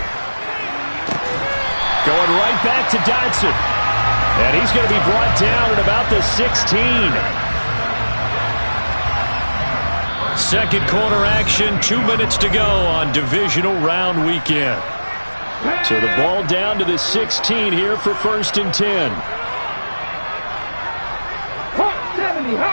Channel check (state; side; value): inverted; both; correlation -1.00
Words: Going right back to Dotson. And he's going to be brought down at about the 16. Second quarter action, 2 minutes to go on divisional round weekend. So the ball down to the 16 here for 1st and 10. Hawk 70,